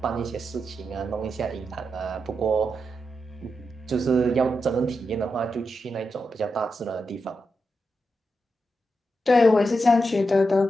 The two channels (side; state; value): both; normal; correlation 0.87